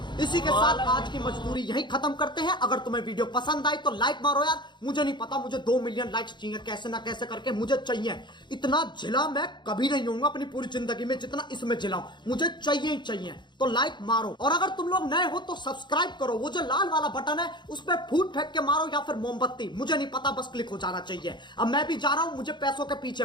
इसी के साथ आज की मजदूरी यही खत्म करते हैं। अगर तुम्हें वीडियो पसंद आई तो लाइक मारो यार। मुझे नहीं पता, मुझे 2 मिलियन लाइक्स चाहिए, कैसे ना कैसे करके मुझे चाहिए। इतना झिला मैं कभी नहीं होऊंगा अपनी पूरी जिंदगी में जितना इसमें झिलाऊं, मुझे चाहिए ही चाहिए। तो लाइक मारो, और अगर तुम लोग नए हो तो सब्सक्राइब करो। वो जो लाल वाला बटन है उस पर फूट फेंक के मारो या फिर मोमबत्ती, मुझे नहीं पता, बस क्लिक हो जाना चाहिए। अब मैं भी जा रहा हूं, मुझे पैसों के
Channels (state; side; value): late; right; 0.22 ms